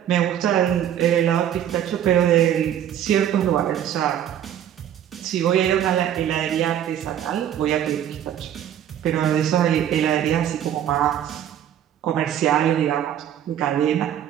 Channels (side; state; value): left; quieter; 10.5 dB